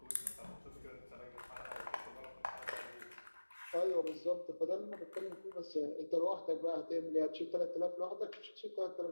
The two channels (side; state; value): both; inverted; correlation -1.00